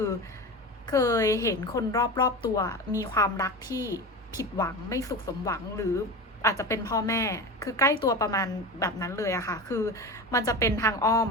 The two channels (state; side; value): normal; both; correlation 0.27